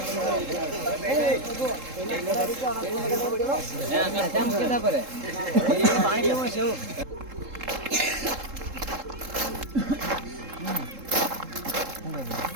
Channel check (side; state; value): left; late; 3.7 ms